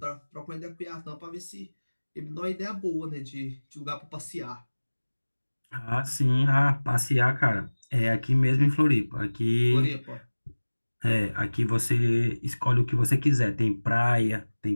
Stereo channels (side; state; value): both; inverted; correlation -1.00